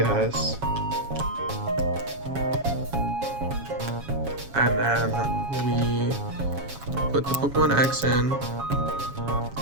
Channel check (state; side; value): late; left; 7.3 ms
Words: And then we put the Pokemon X in.